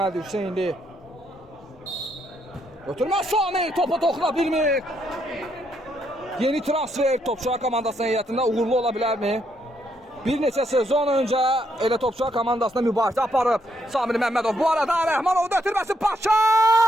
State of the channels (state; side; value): normal; both; correlation 0.75